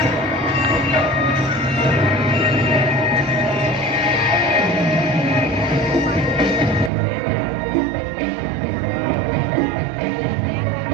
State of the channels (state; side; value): drops out; left; at 6.9 s